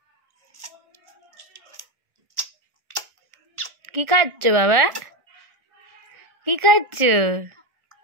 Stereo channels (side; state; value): left; late; 1.4 ms